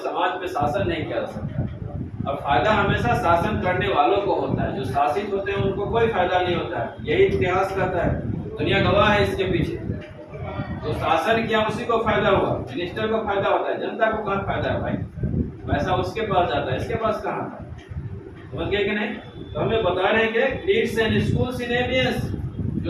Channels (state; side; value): identical; both; correlation 1.00